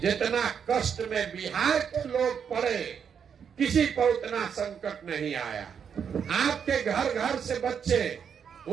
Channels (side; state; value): left; quieter; 7.4 dB